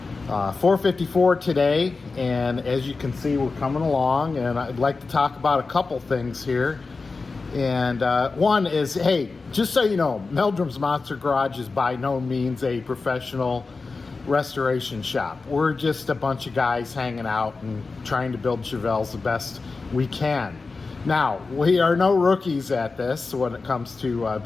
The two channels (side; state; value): right; quieter; 4.1 dB